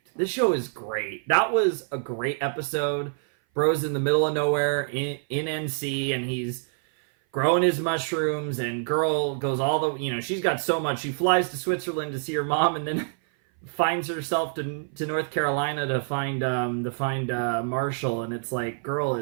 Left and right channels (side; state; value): left; silent; 57 dB below the other